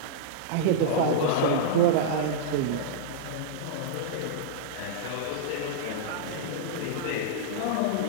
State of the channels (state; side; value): different; both; correlation -0.02